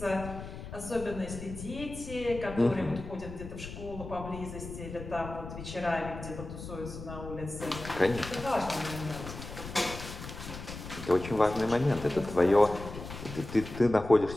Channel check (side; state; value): left; noise; rumble, 10 dB below the sound